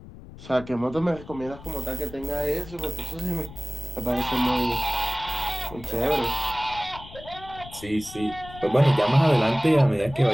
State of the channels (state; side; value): noise; left; rumble, 17 dB below the sound